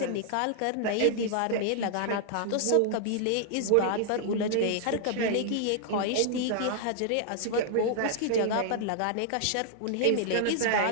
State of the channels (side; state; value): both; different; correlation -0.01